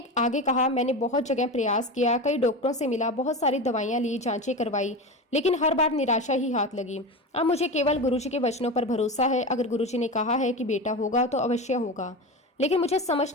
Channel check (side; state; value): both; normal; correlation 0.24